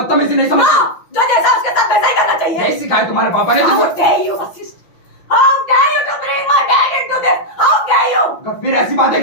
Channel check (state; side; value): late; right; 5.9 ms